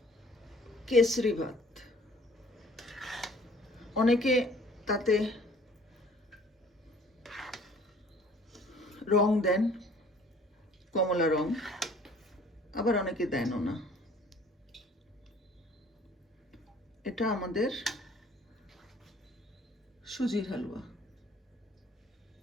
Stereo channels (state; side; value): normal; both; correlation 0.54